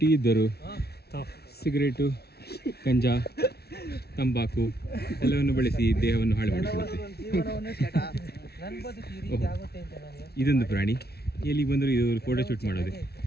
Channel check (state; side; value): late; right; 0.46 ms